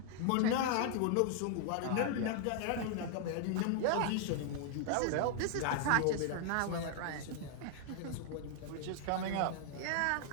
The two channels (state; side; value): different; both; correlation 0.00